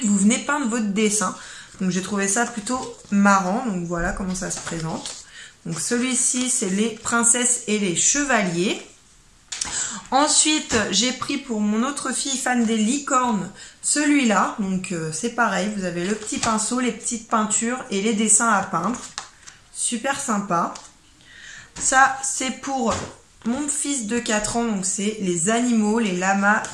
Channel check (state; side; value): identical; both; correlation 1.00